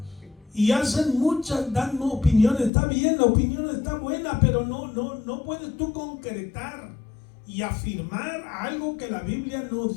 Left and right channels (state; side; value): drops out; right; at 2.7 s